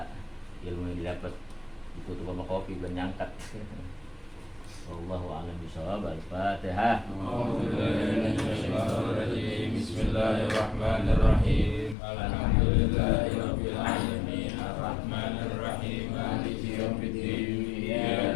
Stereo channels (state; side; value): drops out; right; at 12.0 s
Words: ilmu yang didapat ditutup sama kopi belum nyangkat. Wallahu a'lam bishawab. Al-Fatihah. Bismillahirrahmanirrahim. Alhamdulillahirabbil alamin. Arrahmanir rahim. Maliki yaumiddin.